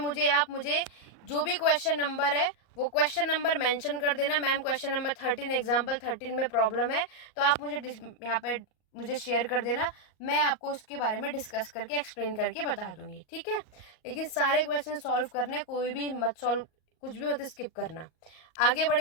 जो भी क्वेश्चन नंबर है वो क्वेश्चन नंबर मेंशन कर देना। मैम क्वेश्चन नंबर 13 एग्जाम्पल 13 में प्रॉब्लम है, तो आप मुझे यहाँ पे मुझे शेयर कर देना, मैं आपको उसके बारे में डिस्कस करके एक्सप्लेन करके बता दूंगी। ठीक है, लेकिन सारे क्वेश्चन सॉल्व करने, कोई भी मत सॉल्व, कुछ भी मत स्किप करना। आगे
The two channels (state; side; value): late; right; 38 ms